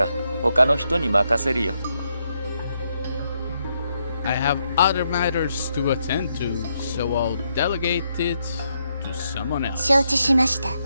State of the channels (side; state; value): both; inverted; correlation -0.79